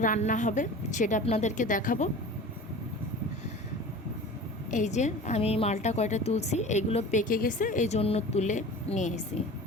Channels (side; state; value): both; normal; correlation 0.38